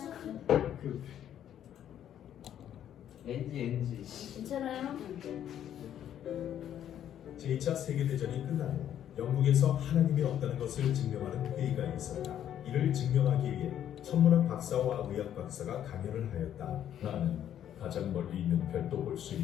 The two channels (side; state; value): right; quieter; 10.4 dB